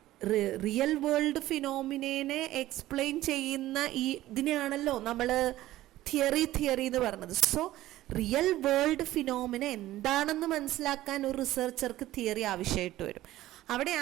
റിയൽ വേൾഡ് ഫിനോമിനെ എക്സ്പ്ലെയിൻ ചെയ്യുന്ന ഇതിനെയാണല്ലോ നമ്മൾ തിയറി എന്ന് പറയുന്നത്. സോ റിയൽ വേൾഡ് ഫിനോമിന എന്താണെന്ന് മനസ്സിലാക്കാൻ ഒരു റിസർച്ചർക്ക് തിയറി ആവശ്യമായിട്ട് വരും.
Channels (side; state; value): left; quieter; 15.3 dB